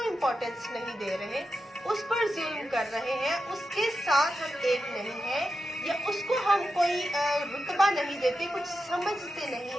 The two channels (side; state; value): both; normal; correlation 0.89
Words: इम्पोर्टेंस नहीं दे रहे, उस पर जुल्म कर रहे हैं, उसके साथ हम एक नहीं हैं, या उसको हम कोई रुतबा नहीं देते, कुछ समझते